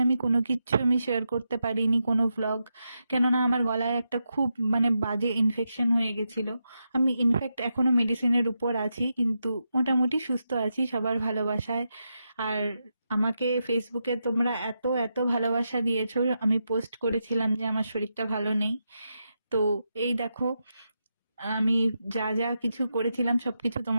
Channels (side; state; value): both; inverted; correlation -0.86